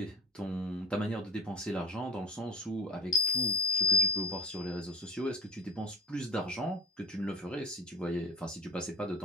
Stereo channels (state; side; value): normal; both; correlation 0.30